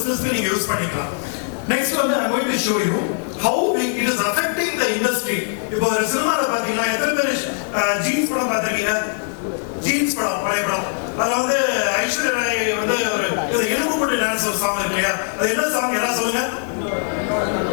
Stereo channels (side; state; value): right; silent; digital silence